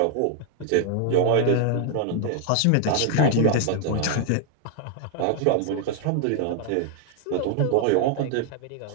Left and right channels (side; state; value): both; different; correlation 0.00